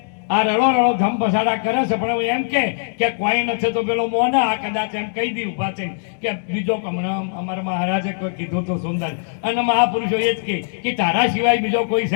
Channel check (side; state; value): right; silent; digital silence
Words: આ રડો ધમ પસાડા કરે છે, પણ એમ કે કોઈ નથી તો પેલો મોના આ કદાચ એમ કહી દી ઉભા થઈને કે બીજો હમણાં અમારા મહારાજે કોઈ કીધું તો સુંદર અને મહાપુરુષો એ જ કે તારા સિવાય બીજો કોઈ છે